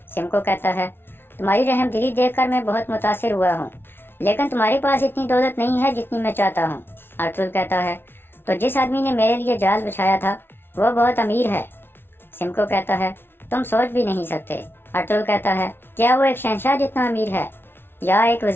सिमको कहता है, तुम्हारी रहम दिली देखकर मैं बहुत मुतासिर हुआ हूँ, लेकिन तुम्हारे पास इतनी दौलत नहीं है जितनी मैं चाहता हूँ। अर्तुल कहता है, तो जिस आदमी ने मेरे लिए जाल बिछाया था वो बहुत अमीर है। सिमको कहता है, तुम सोच भी नहीं सकते। अर्तुल कहता है, क्या वो एक शहंशाह जितना अमीर है, या एक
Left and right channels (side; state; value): right; late; 0.11 ms